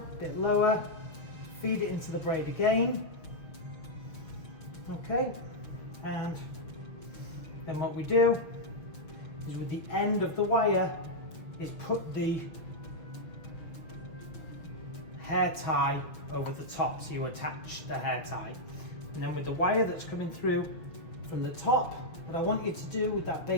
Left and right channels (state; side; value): late; right; 6.3 ms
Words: bit lower, feed it into the braid again, okay? And then what we do is with the end of the wire is put the hair tie over the top, so you attach the hair tie. And then with the wire that's coming through from the top, what I want you to do with that